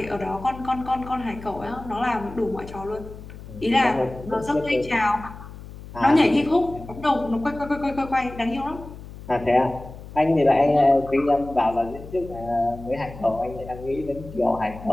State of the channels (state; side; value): noise; left; hum, 15 dB below the sound